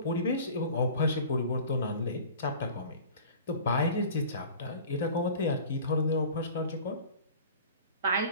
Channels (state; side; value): inverted; both; correlation -0.42